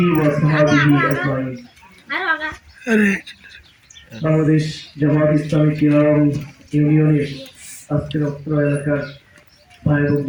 وصحبه أجمعين বাংলাদেশ জামাত ইসলামী কিরাম ইউনিয়নের আজকের অত্র এলাকার ভাই এবং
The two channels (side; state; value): both; identical; correlation 1.00